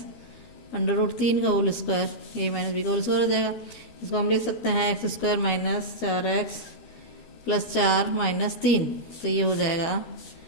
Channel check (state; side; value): late; right; 12 ms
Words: under root 3 का whole square, a minus B का होल स्क्वायर हो जाएगा। इसको हम लिख सकते हैं x² minus 4x plus 4 minus 3, तो ये हो जाएगा